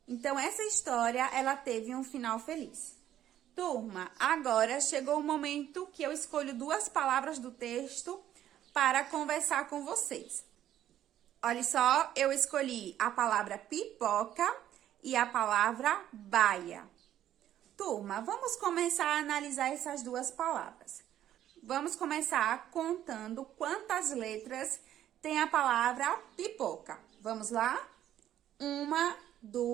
Então, essa história, ela teve um final feliz. Turma, agora chegou o momento que eu escolho duas palavras do texto para conversar com vocês. Olha só, eu escolhi a palavra pipoca e a palavra baia. Turma, vamos começar a analisar essas duas palavras. Vamos começar contando quantas letras tem a palavra pipoca. Vamos lá? 1,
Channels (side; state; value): left; quieter; 11.6 dB